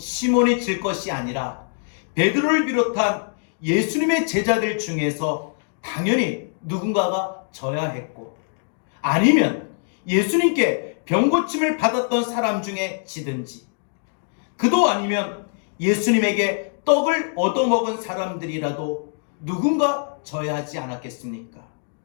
질 것이 아니라 베드로를 비롯한 예수님의 제자들 중에서 당연히 누군가가 져야 했고, 아니면 예수님께 병고침을 받았던 사람 중에 지든지, 그도 아니면 예수님에게 떡을 얻어먹은 사람들이라도 누군가 져야 하지 않았겠습니까?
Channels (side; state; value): right; silent; 63 dB below the other